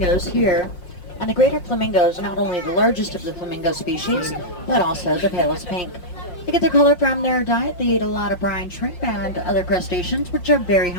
here, and the greater flamingo is not only the largest of the flamingo species, but also the palest pink. They get their color from their diet. They eat a lot of brine shrimp and other crustaceans, which are very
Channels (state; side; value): late; right; 5.6 ms